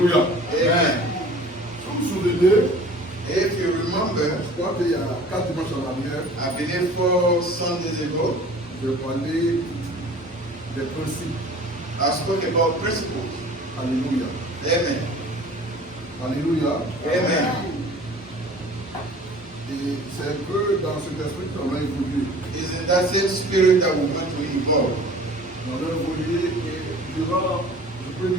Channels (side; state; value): both; normal; correlation 0.45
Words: Amen. Si vous vous souvenez, If you remember, je crois qu'il y a 4 dimanches en arrière, I believe 4 Sundays ago, je parlais des principes. I spoke about principles. Alléluia. Amen. Alléluia. Amen. Et c'est un peu dans cet esprit qu'on a évolué. It's in that same spirit that we want to evolve. On a évolué et durant, je peux